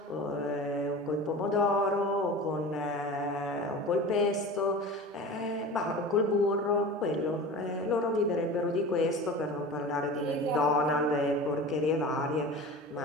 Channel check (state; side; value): normal; both; correlation 0.34